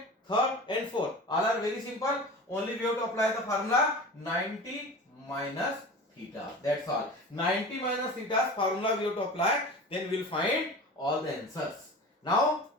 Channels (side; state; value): both; normal; correlation 0.35